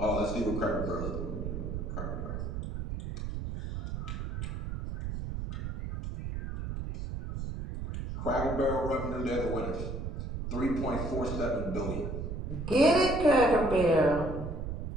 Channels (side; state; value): right; noise; rumble, 5 dB below the sound